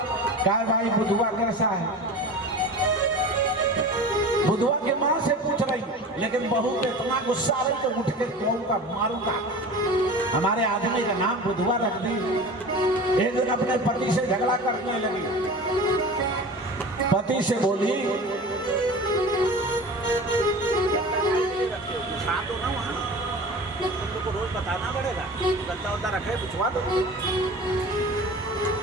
कहा भाई बुधुआ कैसा है? बुधुआ के मां से पूछ रही, लेकिन बहू को इतना गुस्सा आ रही तो उठ के कहूँगा मारूंगा। हमारे आदमी का नाम बुधवा रख दी। एक दिन अपने पति से झगड़ा करने लगी। पति से बोली तुमको रोज बताना पड़ेगा, गद्दा उद्दा रखे पूछवा दो।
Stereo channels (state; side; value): normal; both; correlation 0.35